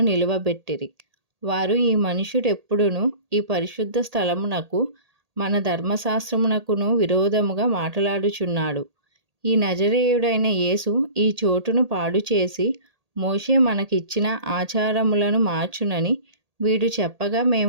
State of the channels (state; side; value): late; left; 1.8 ms